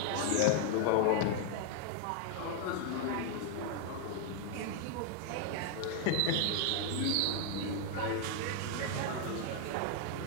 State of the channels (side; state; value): both; different; correlation 0.00